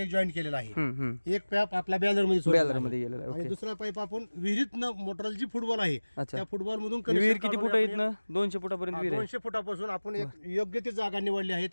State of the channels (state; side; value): inverted; both; correlation -1.00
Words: जॉईंट केलेलं आहे. एक पाईप आपल्या बॅलरमध्ये गेलेला आहे. आणि ओके. दुसरा पाईप आपण विहिरीतनं मोटरल जी फुटबॉल आहे अच्छा. त्या फुटबॉल मधून विहीर किती फूट आहे इथनं? 200 फुटापर्यंत विहीर आहे. 200 फुटापासून आपण एक योग्य ती जागा निवडली आहे.